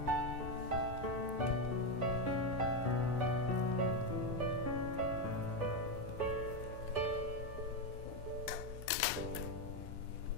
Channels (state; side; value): normal; both; correlation 0.08